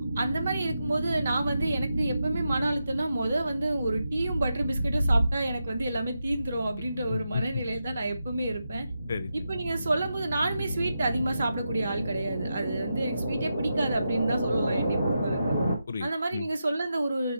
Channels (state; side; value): inverted; both; correlation -0.87